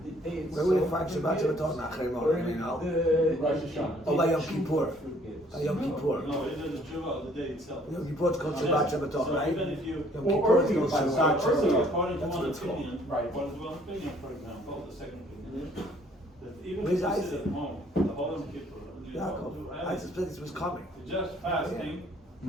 the day it's Where would you find Shabbat Shabbaton? Achrei Mod, you know? Rosh Hashanah. Oh, by Yom Kippur. By Yom Kippur. no, it is tshuva of the day itself. Yom Kippur is called Shabbat Shabbaton, So right? even if you Yom Or Kippur is called earlier, Shabbat earlier. Shabbaton. according to That's what one it's called. opinion, Right. according to one opinion, for example, the second opinion, that even Where's if you Isaac? sit at home, the whole Yom Kippur, you don't Yaakov, do I anything. suspect this was coming. You're just fasting.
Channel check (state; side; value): normal; both; correlation 0.60